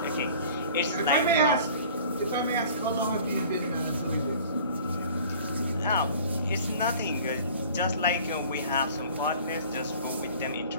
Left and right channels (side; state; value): both; inverted; correlation -0.47